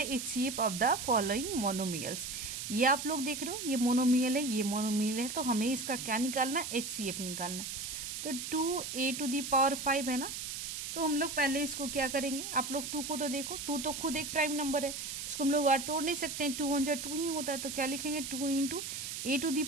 of the following monomials. ये आप लोग देख रहे हो, ये मोनोमियल है, ये मोनोमियल है, तो हमें इसका क्या निकालना है, एचसीएफ निकालना है। तो 2a⁵ है ना, तो हम लोग पहले इसको क्या करेंगे, आप लोग 2 को तो देखो, 2 तो खुद एक प्राइम नंबर है, इसको हम लोग और तोड़ नहीं सकते हैं, 2 1 जा 2 ही होता है, तो क्या लिखेंगे 2 इंटू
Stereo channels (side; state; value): right; noise; hiss, 6 dB below the sound